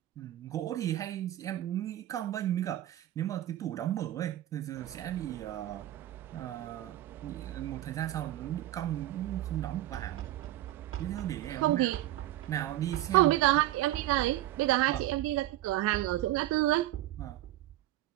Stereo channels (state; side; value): quieter; left; 14.5 dB